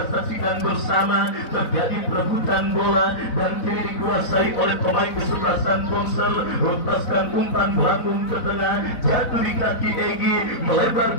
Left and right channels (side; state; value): right; late; 4.0 ms